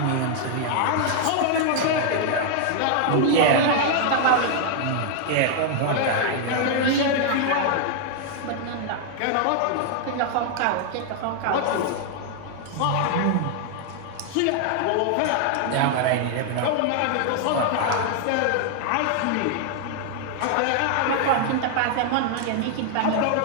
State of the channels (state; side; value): different; both; correlation 0.00